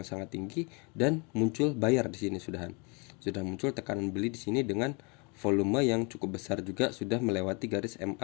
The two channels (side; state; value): right; quieter; 31.5 dB